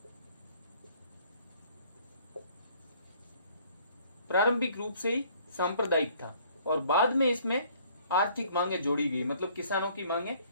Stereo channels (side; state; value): both; inverted; correlation -0.59